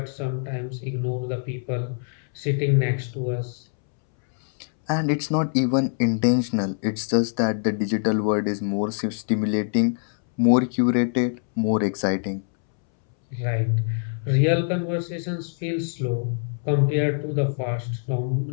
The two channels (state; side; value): silent; right; 62 dB below the other